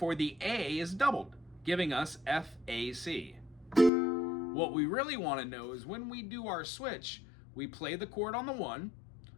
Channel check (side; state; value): right; drops out; at 3.9 s